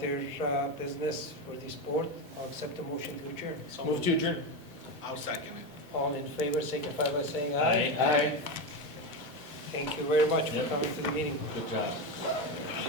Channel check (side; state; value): both; normal; correlation 0.15